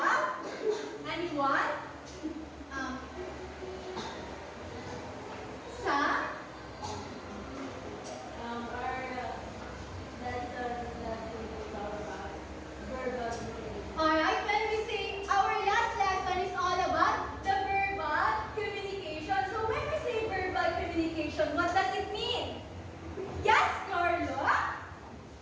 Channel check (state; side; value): identical; both; correlation 1.00